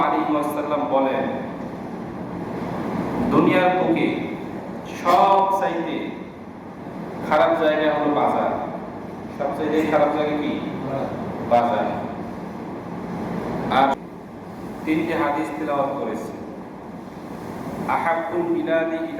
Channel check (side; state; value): both; identical; correlation 1.00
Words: আলাইহি ওয়াসাল্লাম বলেন, দুনিয়ার বুকে সবচাইতে খারাপ জায়গা হলো বাজার। সবচাইতে খারাপ জায়গা কি? বাজার। আর তিনটি হাদিস তেলাওয়াত করেছি। আহাব্বুল বিলাদি